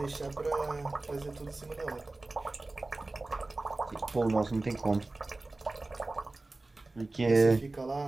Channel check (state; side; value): quieter; left; 3.1 dB